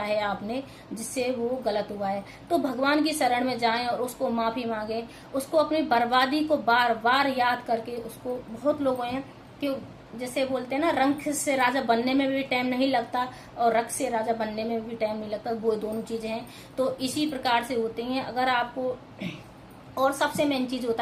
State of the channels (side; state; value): both; identical; correlation 1.00